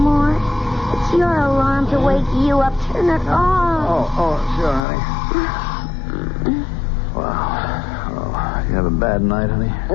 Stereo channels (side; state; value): right; drops out; at 4.8 s